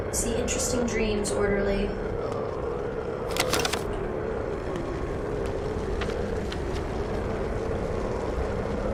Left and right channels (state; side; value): identical; both; correlation 1.00